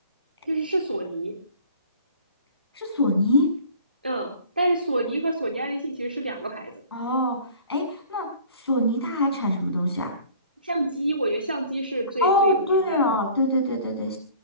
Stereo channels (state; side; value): inverted; both; correlation -0.48